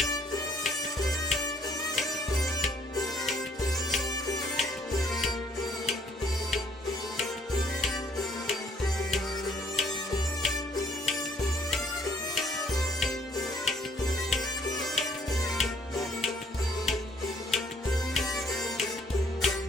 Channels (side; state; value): both; normal; correlation 0.63